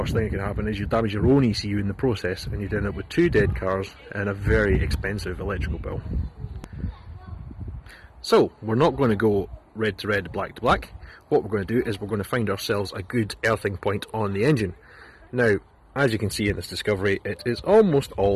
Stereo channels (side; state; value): both; identical; correlation 1.00